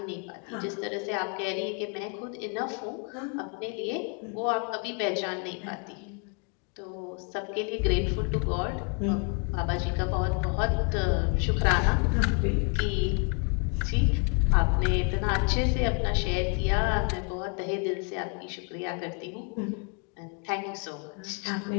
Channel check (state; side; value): quieter; right; 36.6 dB